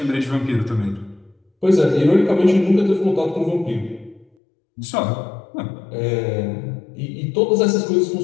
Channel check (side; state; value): right; drops out; at 4.2 s